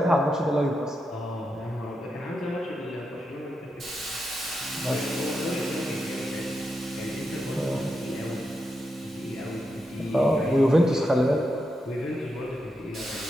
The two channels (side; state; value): both; normal; correlation 0.86